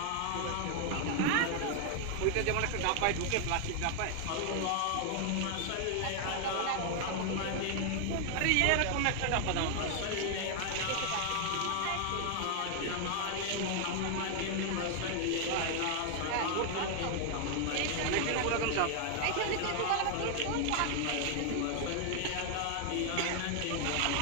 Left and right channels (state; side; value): different; both; correlation 0.00